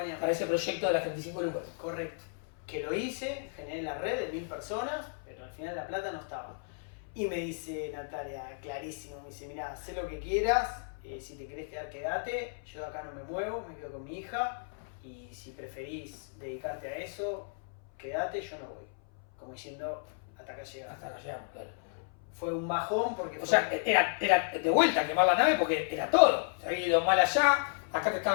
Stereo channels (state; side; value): silent; right; 56 dB below the other